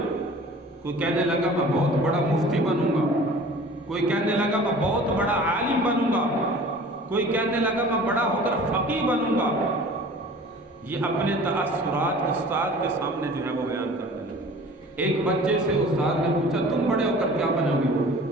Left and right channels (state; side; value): normal; both; correlation 0.44